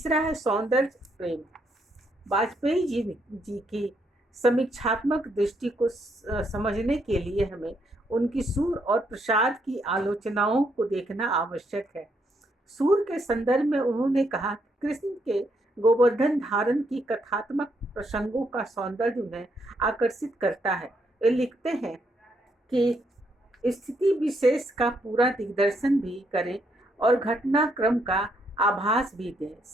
है सौंदर्य प्रेम। वाजपेयी जी की समीक्षात्मक दृष्टि को समझने के लिए हमें उनकी सूर और प्रसाद की आलोचनाओं को देखना आवश्यक है। सूर के संदर्भ में उन्होंने कहा कि कृष्ण के गोवर्धन धारण की कथात्मक प्रसंगों का सौंदर्य उन्हें आकर्षित करता है। वे लिखते हैं कि स्थिति विशेष का पूरा दिग्दर्शन भी करें और घटनाक्रम का आभास भी दें,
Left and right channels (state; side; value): normal; both; correlation 0.75